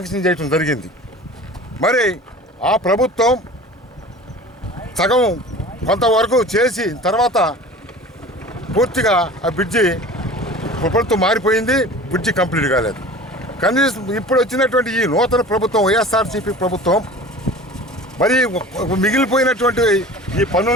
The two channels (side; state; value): both; normal; correlation 0.40